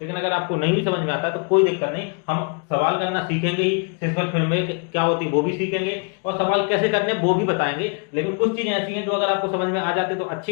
लेकिन अगर आपको नहीं भी समझ में आता है तो कोई दिक्कत नहीं। हम सवाल करना सीखेंगे ही, शेषफल प्रमेय क्या होती है वो भी सीखेंगे और सवाल कैसे करने वो भी बताएंगे। लेकिन कुछ चीजें ऐसी हैं जो अगर आपको समझ में आ जाती है तो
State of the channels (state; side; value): quieter; right; 35.6 dB